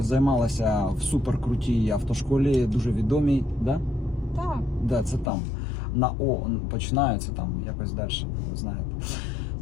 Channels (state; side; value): drops out; right; at 5.2 s